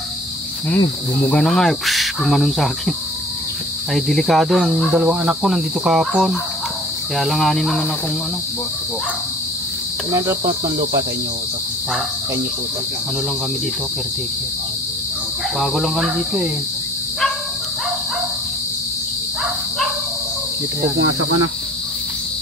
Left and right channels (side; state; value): both; normal; correlation 0.49